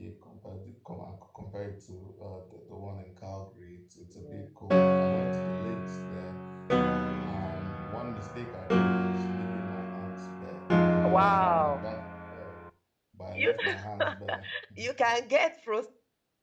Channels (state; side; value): identical; both; correlation 1.00